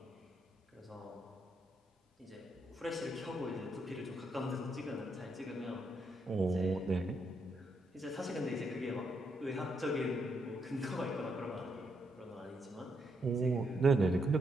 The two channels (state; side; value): normal; both; correlation 0.78